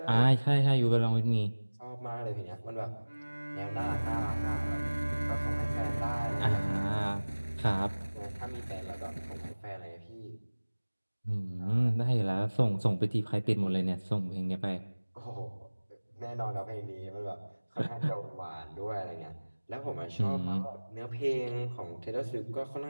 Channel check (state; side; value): inverted; both; correlation -1.00